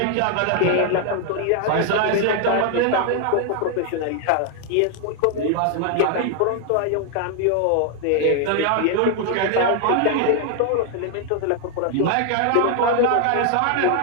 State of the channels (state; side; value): different; both; correlation 0.00